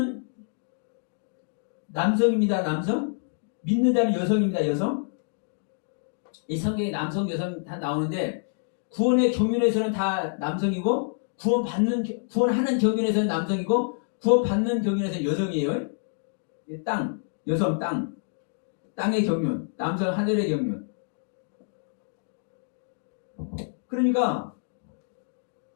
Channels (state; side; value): silent; right; digital silence